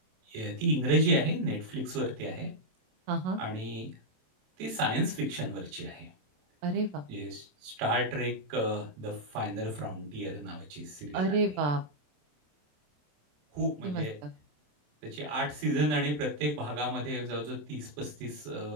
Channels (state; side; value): late; left; 27 ms